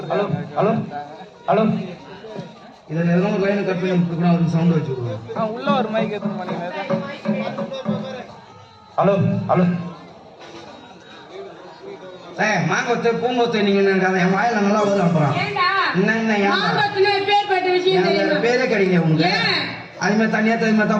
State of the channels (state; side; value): identical; both; correlation 1.00